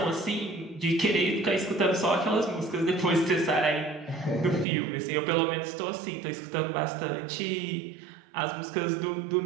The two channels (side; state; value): left; drops out; at 4.7 s